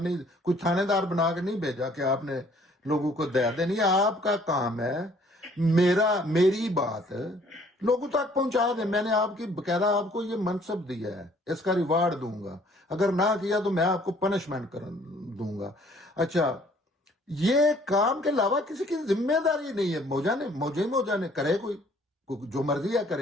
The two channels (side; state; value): both; normal; correlation 0.59